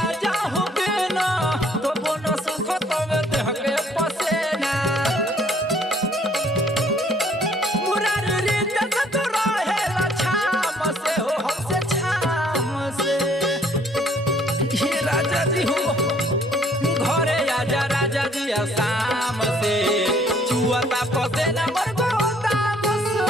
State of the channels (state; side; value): normal; both; correlation 0.61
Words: होके ना तो बोना सुख तवे देहके पसेना मुरार रे जग तो रहेला छाम से हो हमसे छाम से हे राजा जी हो राजा जी शाम से छुअता पसे नमर गोदाम से